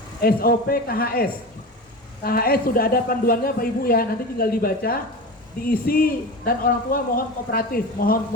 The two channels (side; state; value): both; normal; correlation 0.28